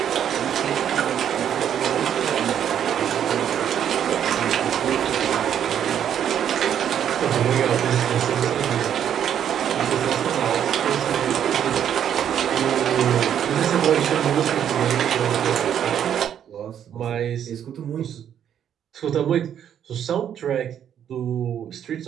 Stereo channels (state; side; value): quieter; left; 9.4 dB